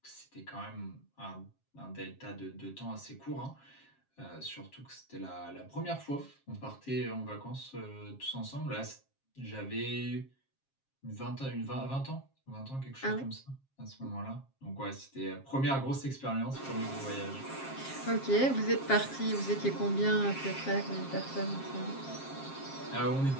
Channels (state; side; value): late; right; 7.4 ms